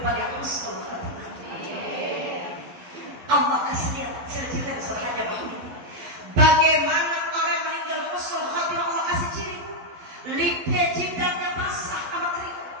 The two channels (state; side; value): late; left; 11 ms